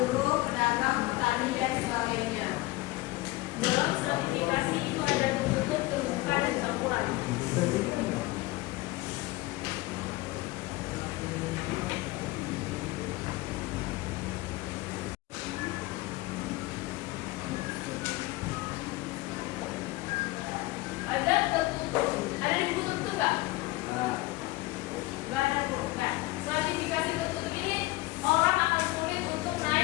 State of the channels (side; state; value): right; quieter; 20.4 dB